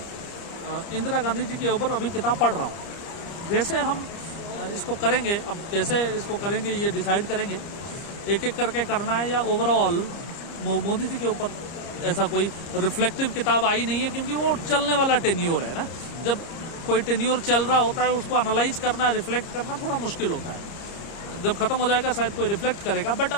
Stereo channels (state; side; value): late; right; 30 ms